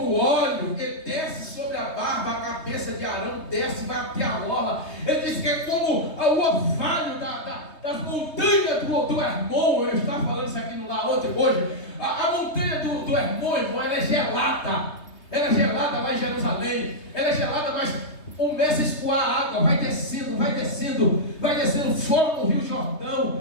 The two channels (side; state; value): right; late; 3.2 ms